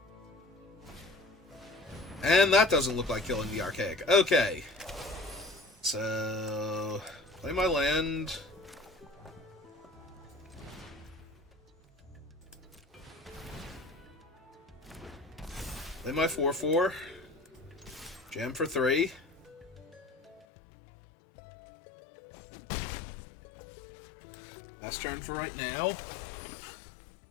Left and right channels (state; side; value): drops out; right; at 20.5 s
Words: And that doesn't look like killing the Archaic. Okay. So, play my land. Play my 4/4. Jam for 3. Last turn for right now.